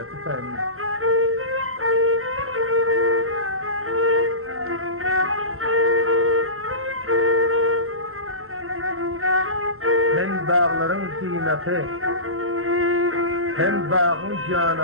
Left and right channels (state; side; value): late; left; 0.62 ms